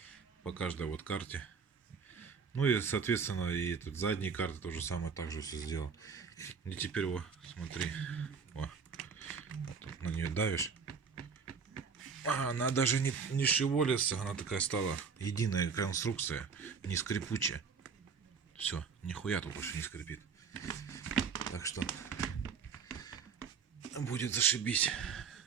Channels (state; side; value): quieter; left; 5.8 dB